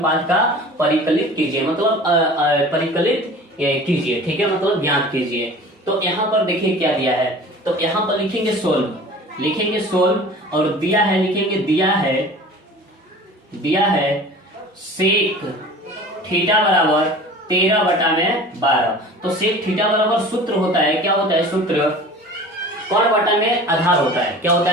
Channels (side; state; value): both; normal; correlation 0.41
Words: का परिकलित कीजिए, मतलब परिकलित कीजिए। ठीक है, मतलब ज्ञात कीजिए। तो यहाँ पर देखिए क्या दिया है, तो यहाँ पर लिखेंगे सोल्व, और दिया है लिखेंगे दिया है सेक थीटा बराबर 13/12। तो सेक थीटा बराबर सूत्र होता है, क्या होता है सूत्र, कर्ण बटा में आधार होता है। क्या होता